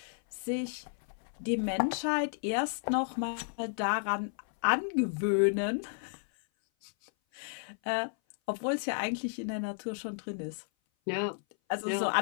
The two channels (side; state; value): right; silent; 56 dB below the other